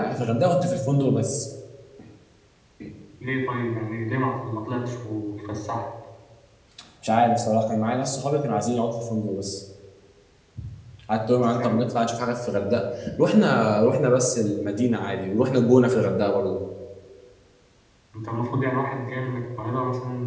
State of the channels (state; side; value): identical; both; correlation 1.00